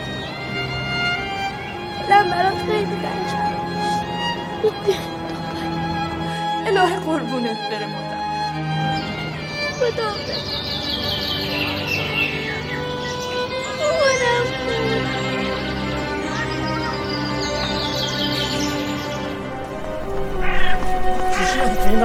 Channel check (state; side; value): identical; both; correlation 1.00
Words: دلم برات خیلی تنگ شد. الهی قربونت بره مادر. خدا مامانم این